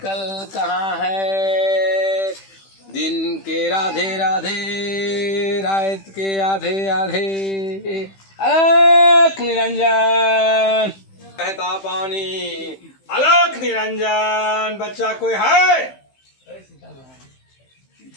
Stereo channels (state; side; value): late; right; 15 ms